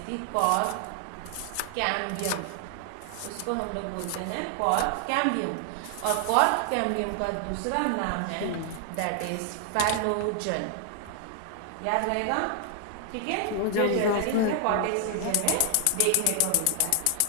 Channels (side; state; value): both; different; correlation 0.00